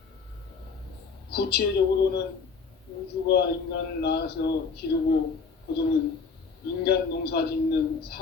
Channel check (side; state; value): right; quieter; 5.0 dB